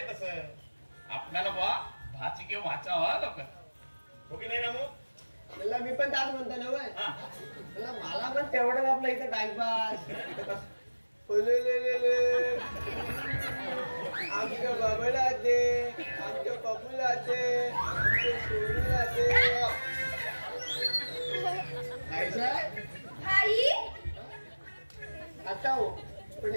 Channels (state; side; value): inverted; both; correlation -1.00